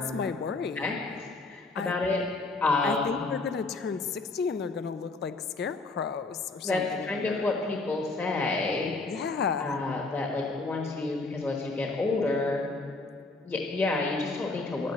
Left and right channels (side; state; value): right; quieter; 3.4 dB